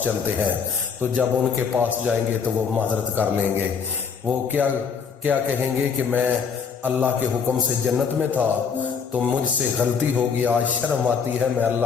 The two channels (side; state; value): right; quieter; 6.2 dB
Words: چلتے ہیں۔ تو جب ان کے پاس جائیں گے تو وہ معذرت کر لیں گے، وہ کیا کہیں گے کہ میں اللہ کے حکم سے جنت میں تھا تو مجھ سے غلطی ہوگی، آج شرم آتی ہے، میں